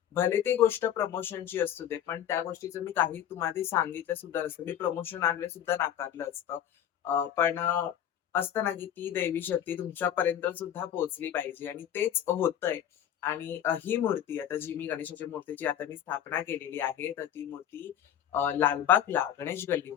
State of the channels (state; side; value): quieter; right; 10.2 dB